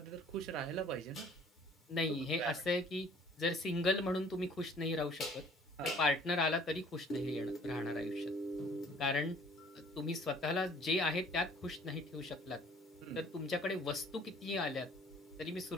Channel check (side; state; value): both; normal; correlation 0.55